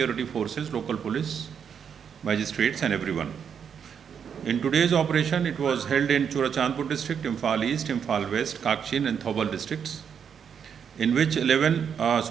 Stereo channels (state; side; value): quieter; left; 7.5 dB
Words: forces, local police, magistrates and everyone. In today's operation, it was held in Churachandpur district, Imphal East, Imphal West, Kakshin and Thoubal districts, in which 11